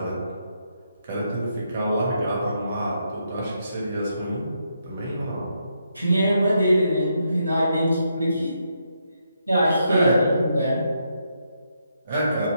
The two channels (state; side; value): inverted; both; correlation -0.79